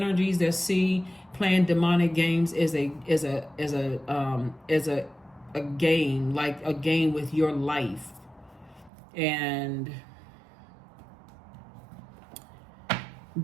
that see playing demonic games is a game, like a game with your life. And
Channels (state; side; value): drops out; left; at 8.9 s